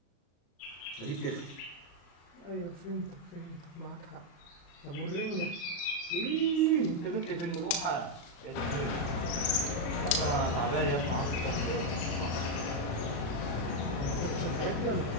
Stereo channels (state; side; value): late; right; 35 ms